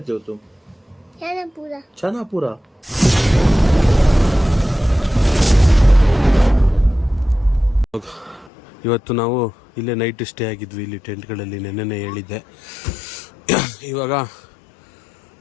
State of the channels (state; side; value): drops out; right; at 8.5 s